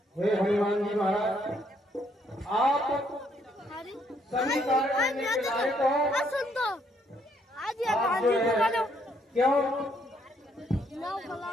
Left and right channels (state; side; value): normal; both; correlation 0.70